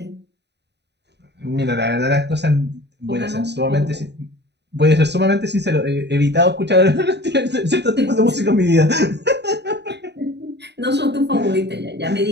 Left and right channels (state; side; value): late; left; 0.50 ms